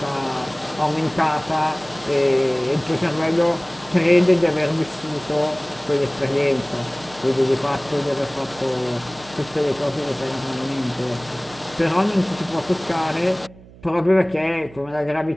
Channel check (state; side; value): noise; right; hum, 21 dB below the sound